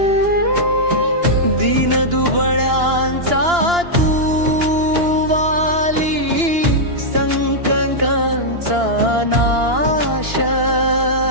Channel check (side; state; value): left; late; 2.9 ms